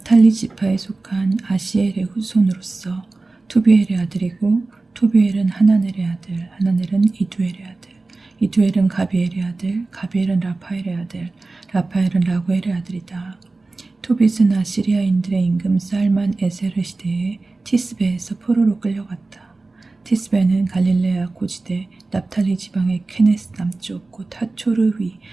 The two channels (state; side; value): quieter; left; 3.4 dB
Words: 지파에 속한 아시엘의 후손으로서 투비엘의 아들이고, 투비엘은 하나넬의 아들, 하나넬은 이두엘의 아들, 이두엘은 가비엘의 아들, 가비엘은 라파엘의 아들, 라파엘은 라구엘의 아들이다. 토빗은 아시리아인들의 임금 살만 에세르 시대에 티스베에서 포로로 끌려갔다. 티스베는 갈릴레아 고지대 납탈리 지방의 케네스 남쪽 곧 하초르 위